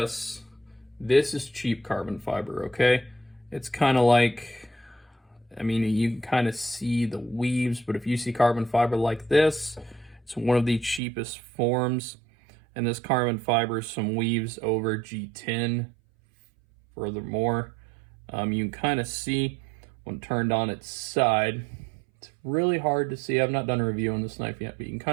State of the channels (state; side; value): drops out; left; at 11.0 s